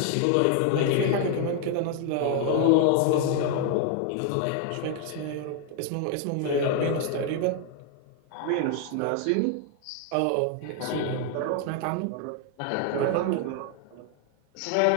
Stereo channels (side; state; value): both; different; correlation 0.00